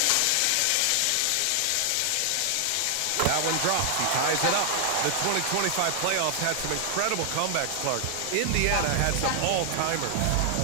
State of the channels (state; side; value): different; both; correlation 0.00